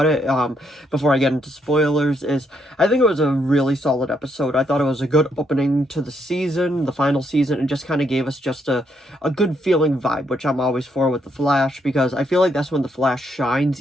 I get into spoilers, I think it was a really solid episode. I thought it was a good opening to the season, the final season, and just kind of gave us just a good feeling vibe, which I'm always for with The Flash, because I feel like that's when The Flash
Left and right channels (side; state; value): both; normal; correlation 0.75